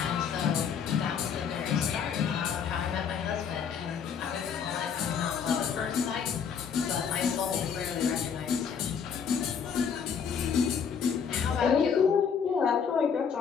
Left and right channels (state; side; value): quieter; right; 6.9 dB